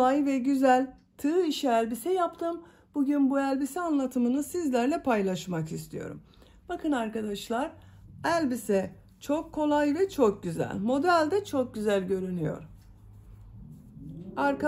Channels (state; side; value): identical; both; correlation 1.00